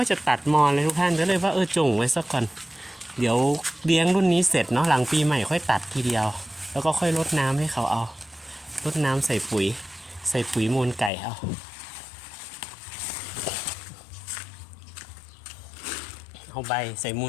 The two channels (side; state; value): right; drops out; at 11.1 s